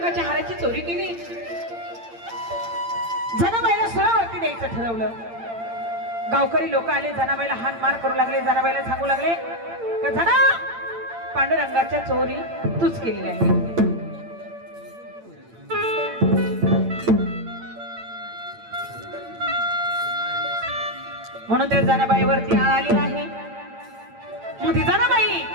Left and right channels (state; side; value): late; left; 8.8 ms